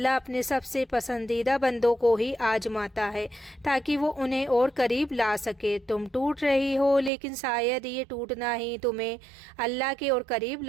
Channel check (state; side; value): drops out; left; at 7.1 s